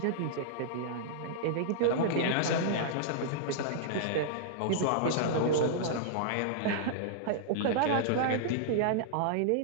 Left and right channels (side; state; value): both; different; correlation -0.02